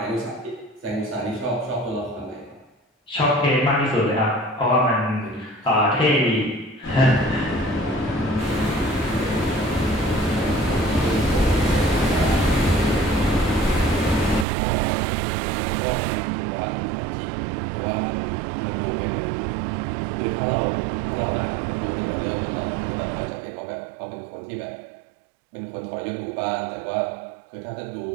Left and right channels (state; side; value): drops out; left; at 14.5 s